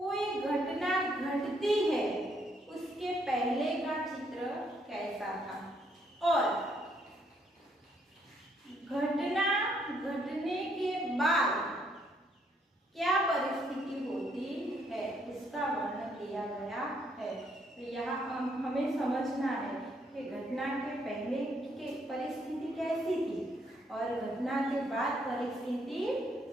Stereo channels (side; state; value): both; normal; correlation 0.71